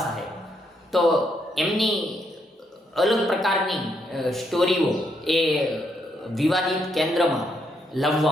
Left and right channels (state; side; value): normal; both; correlation 0.76